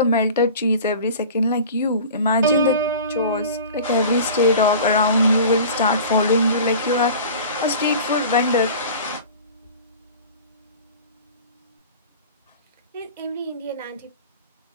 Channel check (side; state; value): both; inverted; correlation -0.40